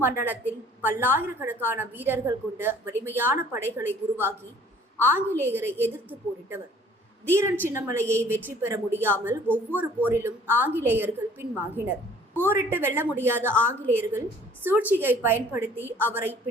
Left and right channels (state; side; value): normal; both; correlation 0.54